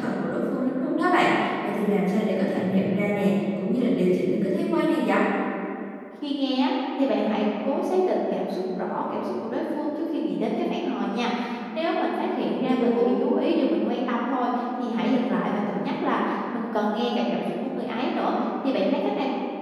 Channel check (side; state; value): both; identical; correlation 1.00